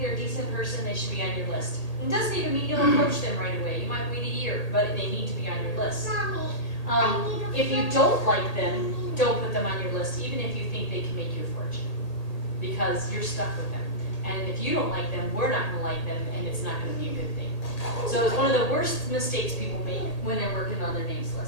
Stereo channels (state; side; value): late; right; 1.8 ms